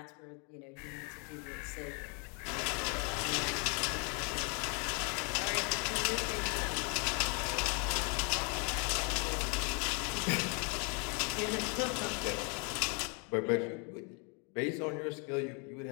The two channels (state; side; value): quieter; right; 35.8 dB